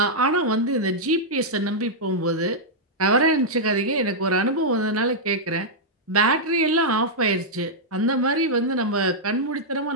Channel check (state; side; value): normal; both; correlation -0.07